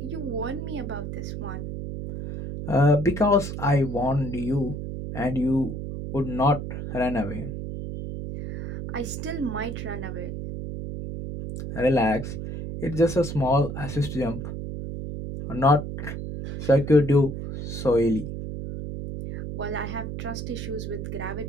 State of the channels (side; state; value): right; noise; hum, 6 dB below the sound